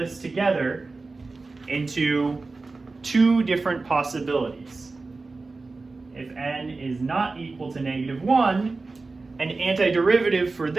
together into two different possibilities. If n is not equal to -1, an antiderivative for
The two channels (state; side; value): quieter; left; 3.7 dB